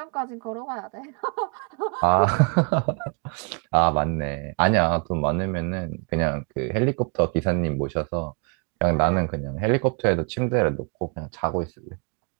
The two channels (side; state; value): left; quieter; 37.6 dB